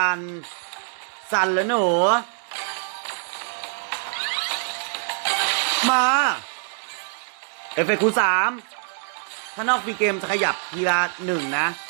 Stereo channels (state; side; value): silent; left; digital silence